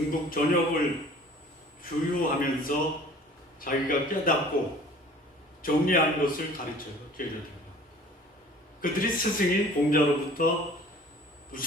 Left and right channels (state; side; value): normal; both; correlation 0.48